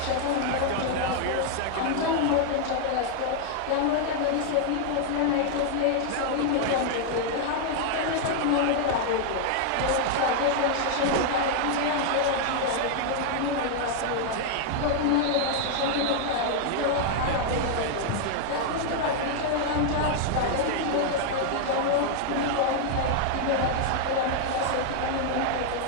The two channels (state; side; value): different; both; correlation 0.00